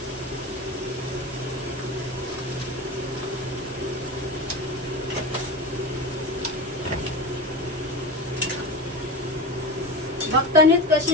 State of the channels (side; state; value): both; normal; correlation 0.25